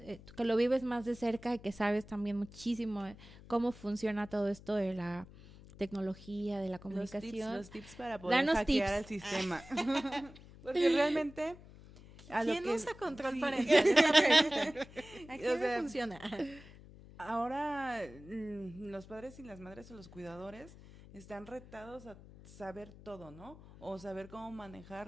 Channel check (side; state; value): left; noise; hum, 19 dB below the sound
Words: tú que lo vives más de cerca y que sabes también muchísimo cómo funciona todo esto de la tecnología, de la comunicación. Los tips para poder Danos hackear al tips. sistema. Porque realmente a lo ¿Quién que usa control sí. parental? Es la pregunta. ¿A quién O le sea, funciona? ahora los padres y las madres o los cuidadores están retados a saber todo, ¿no? O saber cómo